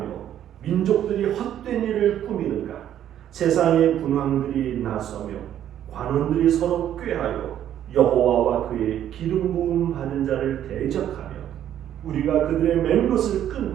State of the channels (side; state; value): left; quieter; 10.8 dB